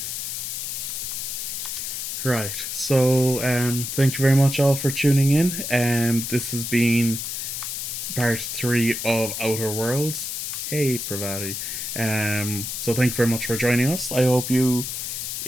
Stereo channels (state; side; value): noise; left; hiss, 4 dB below the sound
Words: Right. So, thank you very much all for tuning in. This has been part 3 of Outer Worlds. Hey, Pravati. So thank you very much for joining us. I hope you